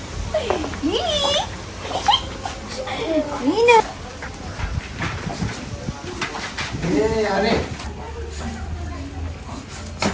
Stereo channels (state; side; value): identical; both; correlation 1.00